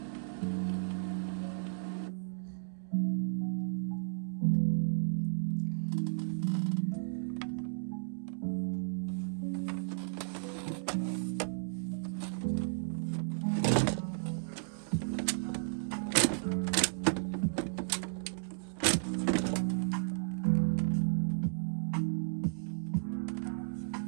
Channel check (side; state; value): left; silent; digital silence